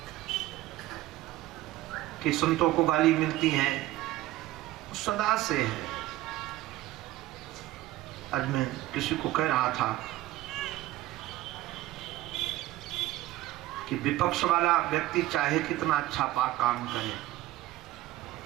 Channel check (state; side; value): quieter; left; 16.2 dB